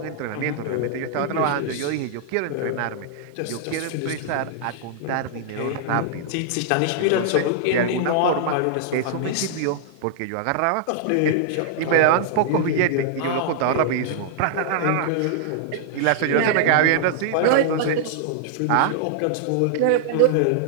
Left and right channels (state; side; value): different; both; correlation -0.01